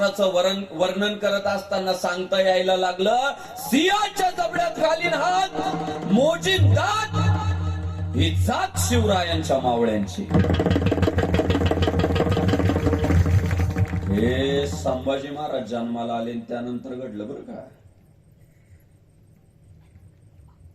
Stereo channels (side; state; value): both; identical; correlation 1.00